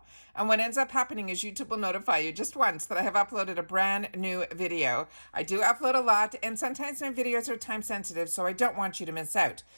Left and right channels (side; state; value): both; inverted; correlation -1.00